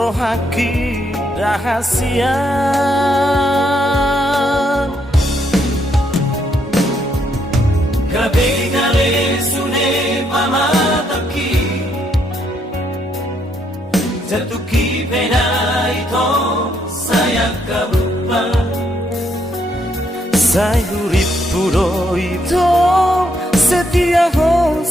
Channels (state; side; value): normal; both; correlation 0.74